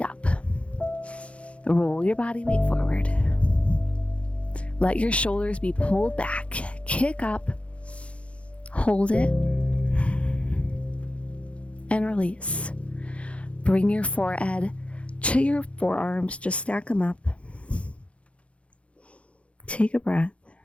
up. Roll your body weight forward. Let your shoulders be pulled back. Kick up. Hold it. And release. Bring your forehead to your forearms. Just stack them up. Take a breath.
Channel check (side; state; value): right; late; 0.062 ms